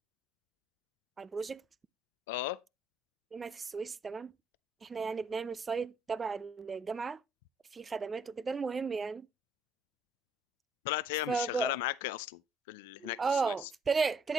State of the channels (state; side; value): normal; both; correlation 0.65